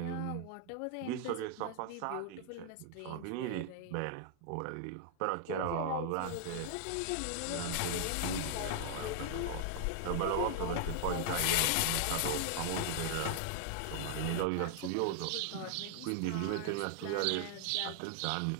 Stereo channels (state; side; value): different; both; correlation 0.00